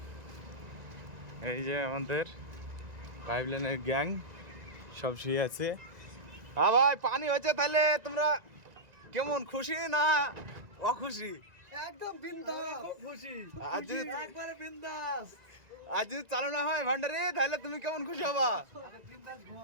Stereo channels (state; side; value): late; left; 1.9 ms